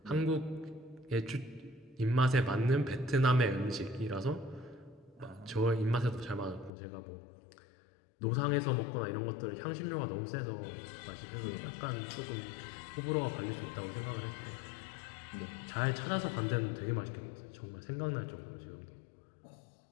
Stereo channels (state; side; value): drops out; right; at 6.7 s